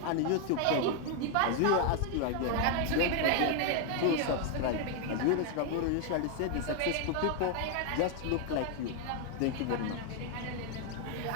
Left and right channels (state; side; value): different; both; correlation 0.01